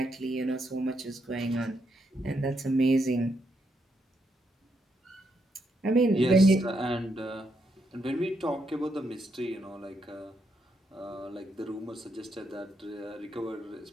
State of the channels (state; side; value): normal; both; correlation 0.78